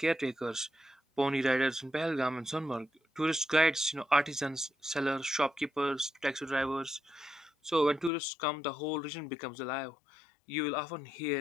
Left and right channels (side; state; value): right; drops out; at 8.1 s